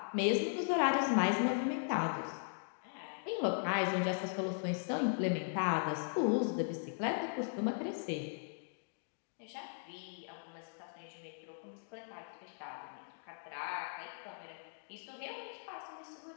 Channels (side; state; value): right; silent; digital silence